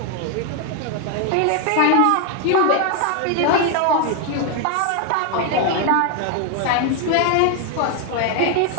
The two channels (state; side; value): different; both; correlation 0.00